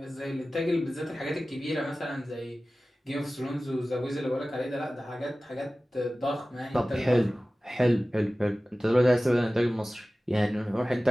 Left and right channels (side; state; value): both; normal; correlation 0.97